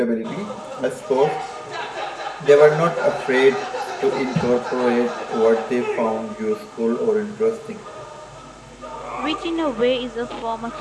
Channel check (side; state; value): both; identical; correlation 1.00